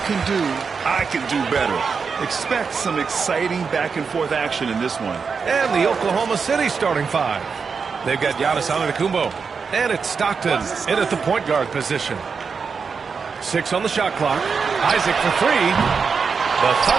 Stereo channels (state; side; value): quieter; left; 5.5 dB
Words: can do, I can do better. Expect some exciting back-and-forth action in this one. And the Oklahoma City starting five. They've got Giannis Antetokounmpo. And it's Stockton in at the point guard position. 6 on the shot clock. Isaac for 3. The